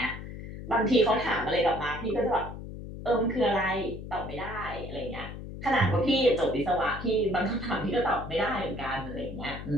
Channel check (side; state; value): left; noise; hum, 10 dB below the sound